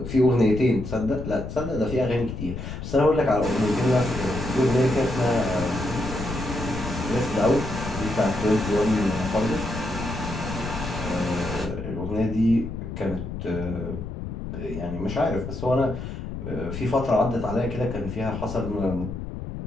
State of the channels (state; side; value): noise; left; rumble, 7 dB below the sound